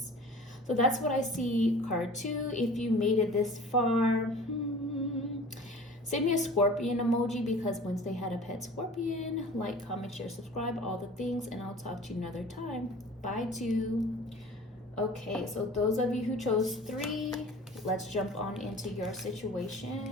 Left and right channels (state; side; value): normal; both; correlation 0.43